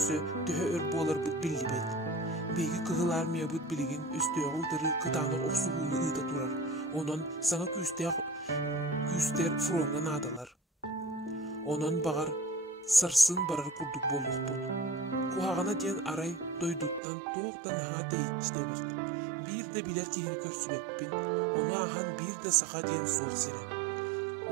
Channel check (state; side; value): drops out; left; at 17.0 s